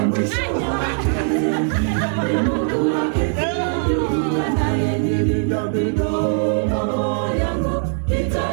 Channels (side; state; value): left; silent; 56 dB below the other